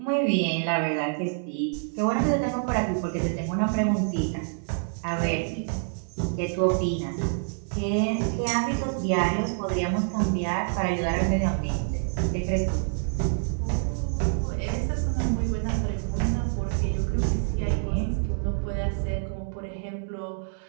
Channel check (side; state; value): left; silent; digital silence